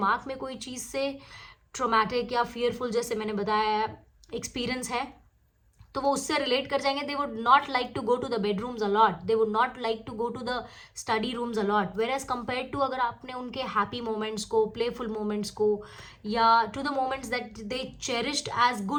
में कोई चीज़ से ट्रोमैटिक या फियरफुल, जैसे मैंने बताया, एक्सपीरियंस है, तो वो उससे रिलेट कर जाएंगे. They would not like to go to the bedrooms a lot, they would not like to go to the study rooms a lot. Whereas compare to अगर आपने उनके हैप्पी मोमेंट्स को, प्लेफुल मोमेंट्स को, या to the moments that they cherished as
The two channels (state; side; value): identical; both; correlation 1.00